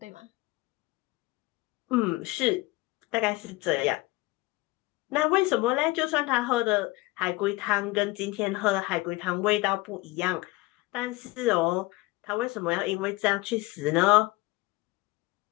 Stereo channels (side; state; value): right; quieter; 21.2 dB